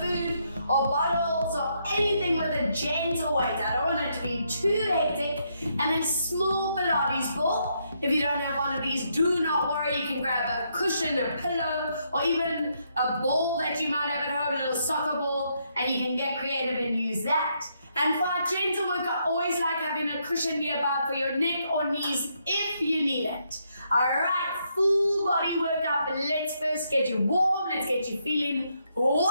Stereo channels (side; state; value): both; inverted; correlation -0.76